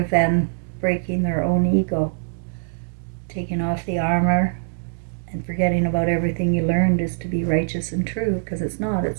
than breaking their own ego, taking off the armor and forgetting about everything you learned is to be righteous and true, because it's not.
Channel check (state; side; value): silent; left; 64 dB below the other